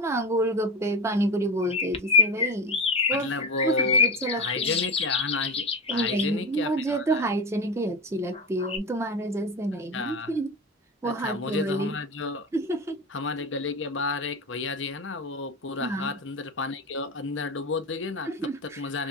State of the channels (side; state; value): both; normal; correlation 0.21